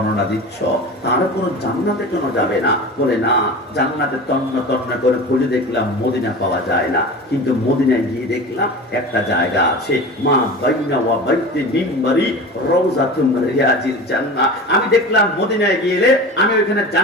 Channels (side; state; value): both; normal; correlation 0.33